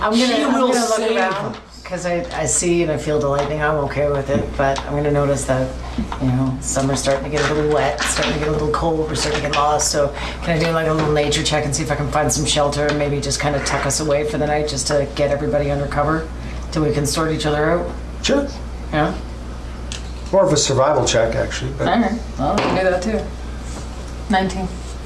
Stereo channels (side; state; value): both; identical; correlation 1.00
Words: He gonna will look save around us. because I see and I feel the lightning. I'm okay with it, but I'm gonna notice that summer's starting to get a little wet, starting to get a little cold. We're starting to get lost. So can I do like a little nature check and see if I can find some shelter and maybe just kind of tuck us away for the night, just to get everybody under cover till we can sort each other out? Sure. Yeah. More of a survival check, actually. But All right. Well, I can do that too. 19.